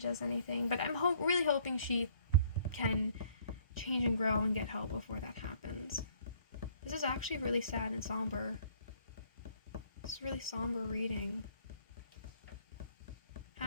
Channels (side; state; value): both; inverted; correlation -0.60